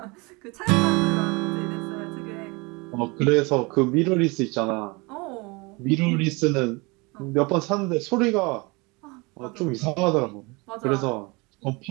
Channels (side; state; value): left; quieter; 26.7 dB